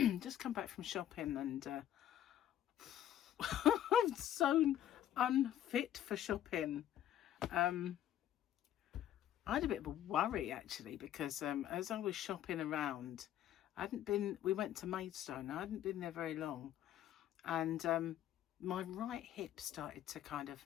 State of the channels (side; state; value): right; quieter; 11.5 dB